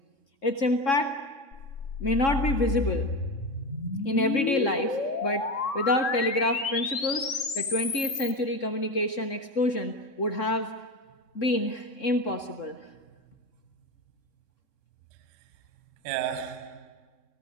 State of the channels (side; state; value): right; late; 3.7 ms